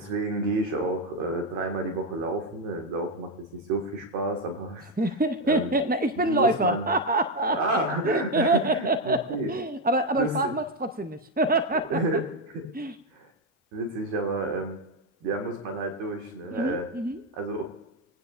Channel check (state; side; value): normal; both; correlation 0.06